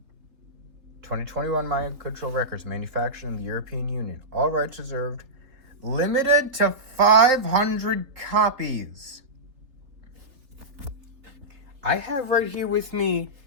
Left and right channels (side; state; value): left; late; 3.7 ms